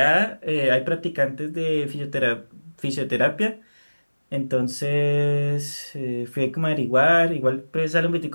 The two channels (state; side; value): inverted; both; correlation -1.00